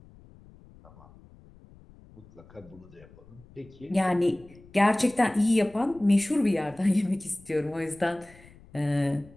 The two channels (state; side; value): noise; left; rumble, 24 dB below the sound